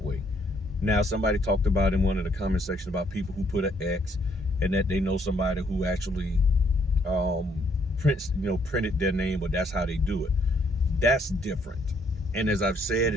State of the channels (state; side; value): normal; both; correlation 0.68